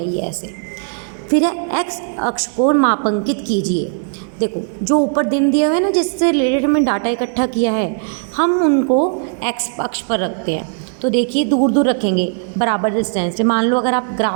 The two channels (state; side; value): silent; left; 63 dB below the other